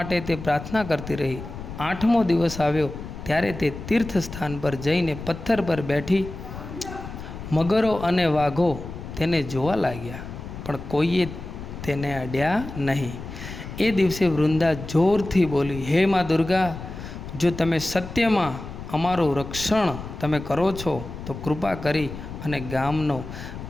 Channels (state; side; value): noise; left; rumble, 11 dB below the sound